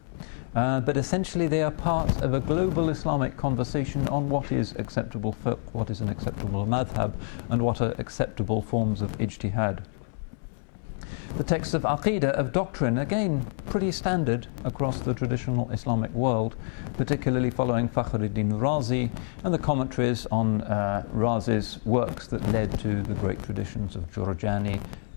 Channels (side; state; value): right; silent; 60 dB below the other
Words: but essentially they are part of a global Islamic conversation on what is acceptable fiqh, what is an acceptable madhab, and what are acceptable forms of ijtihad. The texts of aqidah, of doctrine, again pretty standard across the traditional Islamic world, particularly following Fakhruddin Razi and the commentaries on Razi's works that led to the great traditions of Jurjani,